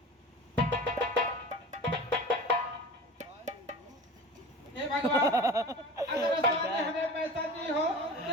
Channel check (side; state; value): both; normal; correlation 0.35